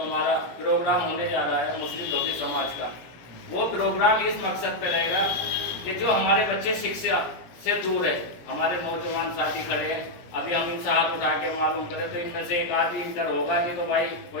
हमारा प्रोग्राम होने जा रहा है मुस्लिम धोबी समाज का, वो प्रोग्राम इस मकसद पे रहेगा कि जो हमारे बच्चे शिक्षा से दूर है, हमारे नौजवान साथी खड़े हैं, अभी हम इनसे हाथ उठा के मालूम करें तो इनमें से एक आदमी इंटर होगा, नहीं तो भाई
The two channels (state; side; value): late; right; 17 ms